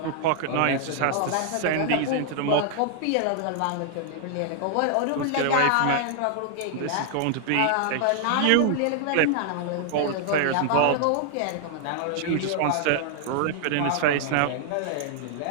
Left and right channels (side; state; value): both; different; correlation 0.00